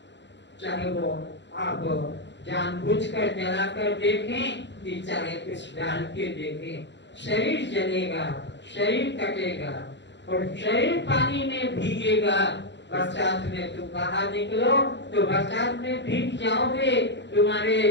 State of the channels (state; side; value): late; right; 0.52 ms